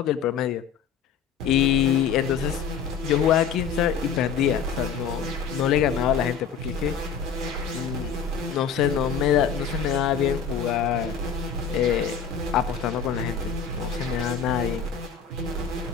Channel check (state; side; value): quieter; right; 6.9 dB